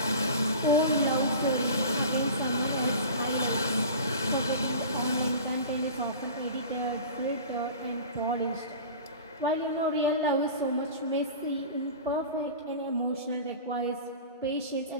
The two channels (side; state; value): both; inverted; correlation -0.36